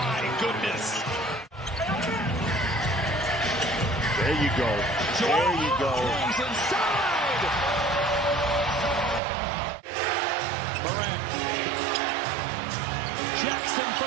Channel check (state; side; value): drops out; left; at 9.2 s